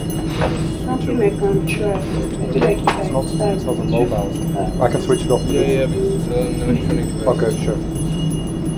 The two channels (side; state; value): both; identical; correlation 1.00